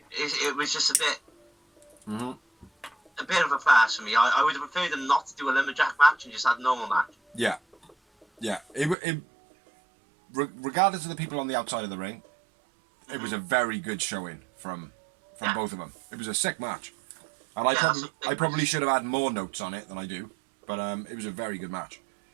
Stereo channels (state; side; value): drops out; left; at 9.0 s